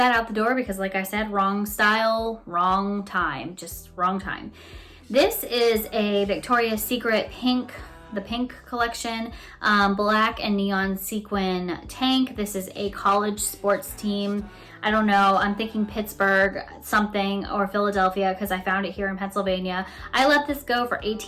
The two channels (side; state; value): both; identical; correlation 1.00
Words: out the door because, like I said, wrong style, wrong time, just wrong time. This is a Victoria's Secret the pink collection, black and neon sequin tank. This is a college sports team. I don't know, I'm thinking Pittsburgh something or Philadelphia because I found it here in Pennsylvania. I let this go for